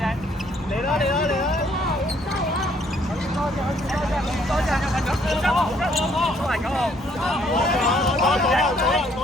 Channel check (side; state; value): both; normal; correlation 0.66